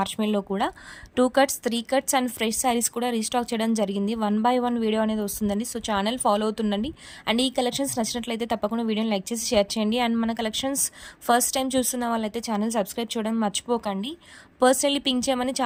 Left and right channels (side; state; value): both; identical; correlation 1.00